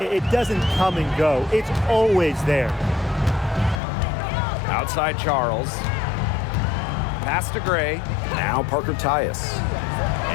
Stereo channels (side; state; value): right; drops out; at 3.8 s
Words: doesn't come and go. It's always there. Outside Charles. Pass to Gray. Now Parker Tyus.